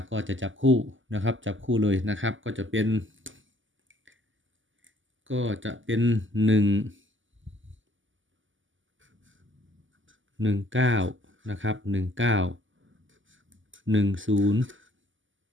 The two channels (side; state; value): left; late; 0.56 ms